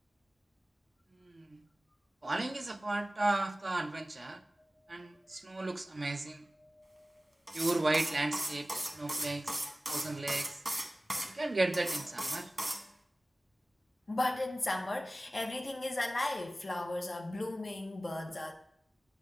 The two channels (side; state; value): both; normal; correlation 0.97